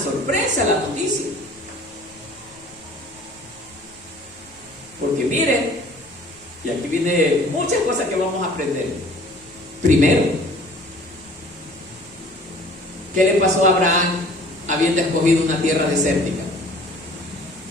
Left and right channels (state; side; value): noise; left; rumble, 30 dB below the sound